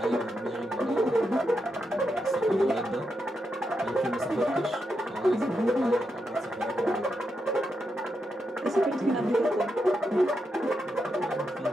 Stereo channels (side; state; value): both; normal; correlation 0.84